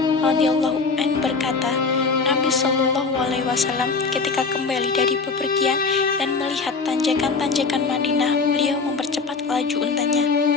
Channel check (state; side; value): quieter; right; 4.5 dB